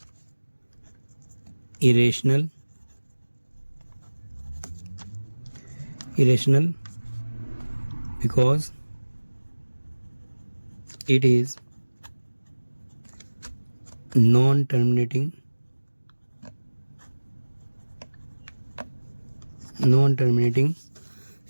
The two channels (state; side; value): inverted; both; correlation -1.00